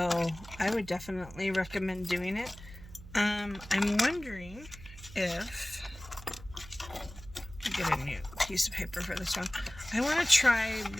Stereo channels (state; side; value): noise; right; hum, 16 dB below the sound